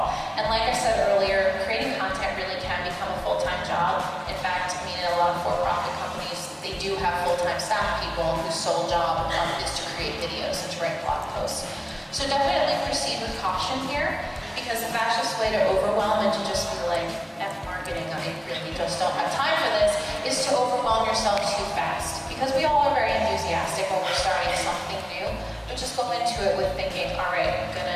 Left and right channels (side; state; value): both; identical; correlation 1.00